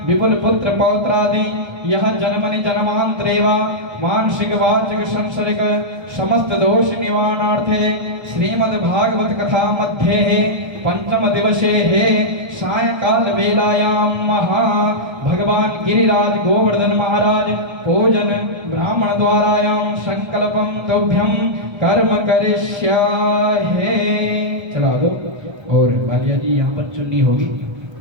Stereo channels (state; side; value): late; left; 1.3 ms